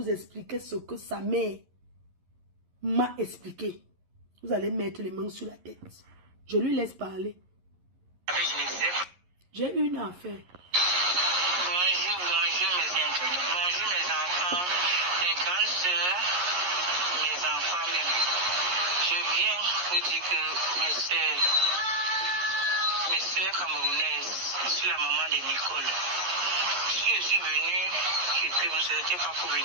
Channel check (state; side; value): late; left; 11 ms